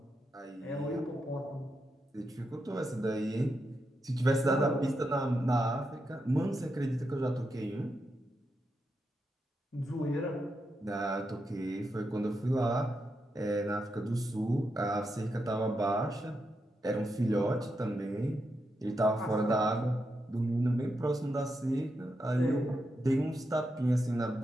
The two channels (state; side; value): normal; both; correlation 0.85